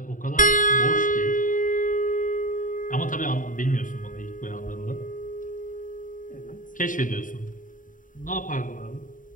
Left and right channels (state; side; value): late; right; 0.38 ms